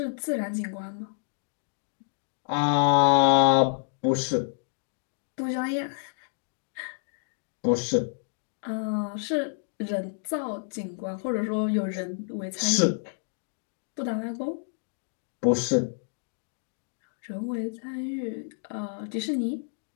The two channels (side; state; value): right; silent; digital silence